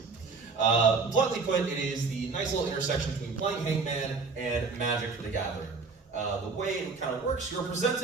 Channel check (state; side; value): quieter; left; 4.5 dB